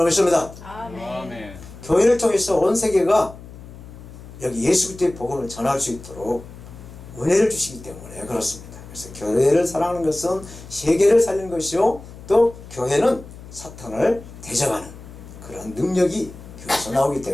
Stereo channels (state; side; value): noise; left; hum, 16 dB below the sound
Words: 믿습니다. 아멘. 교회를 통해서 온 세계가 여기 예수 그리스도의 복음을 전할 수 있도록 은혜를 주시기 때문에 그렇습니다. 그래서 교회를 사랑하는 것은 세계를 살리는 것이요 또 교회는 사탄을 대적하는 그런 능력이 교회에서 나오기